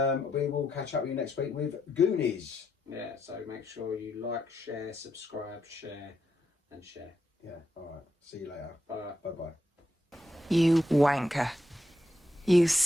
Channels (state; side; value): normal; both; correlation 0.81